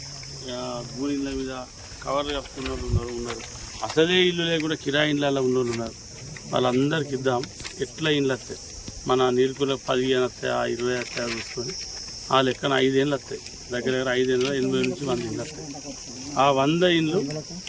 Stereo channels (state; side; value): identical; both; correlation 1.00